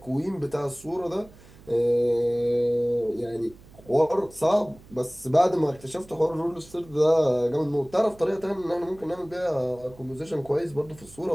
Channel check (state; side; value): noise; right; hum, 23 dB below the sound